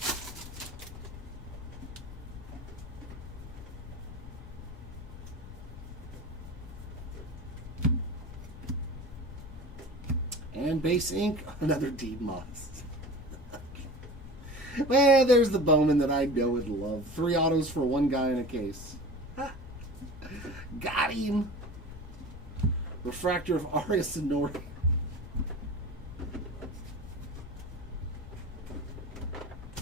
And base ink, another Dean Moss. Well, there's the Bowman that I know and love. 3 autos for 1 guy in a case. Got him. Refractor of Arias Sonori.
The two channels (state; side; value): noise; left; rumble, 13 dB below the sound